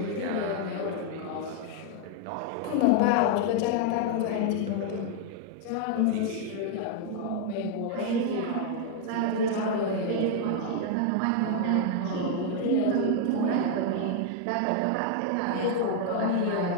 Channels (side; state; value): both; different; correlation 0.00